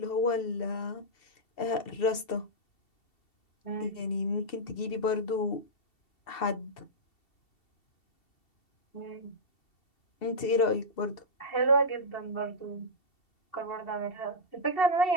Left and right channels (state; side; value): late; right; 2.7 ms